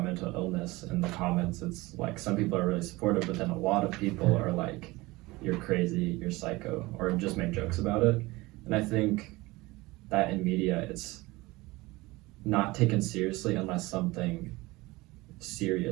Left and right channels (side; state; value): left; quieter; 21.3 dB